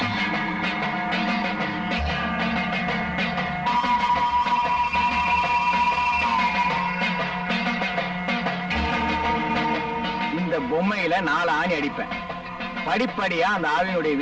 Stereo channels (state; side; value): identical; both; correlation 1.00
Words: இந்த பொம்மையில 4 ஆணி அடிப்பேன். படிப்படியா அந்த ஆவியினுடைய